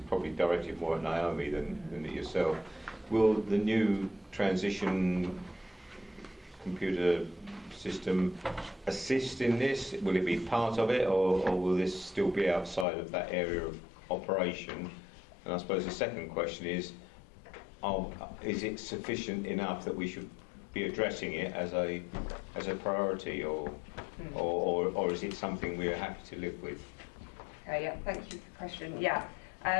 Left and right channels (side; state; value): right; drops out; at 12.9 s